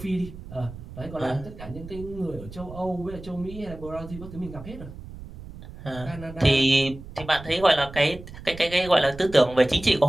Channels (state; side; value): noise; right; rumble, 14 dB below the sound